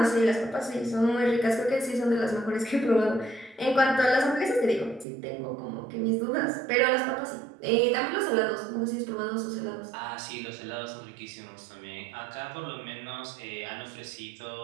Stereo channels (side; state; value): left; drops out; at 5.1 s